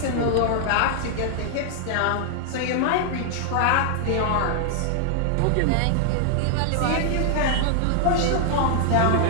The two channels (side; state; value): both; different; correlation 0.00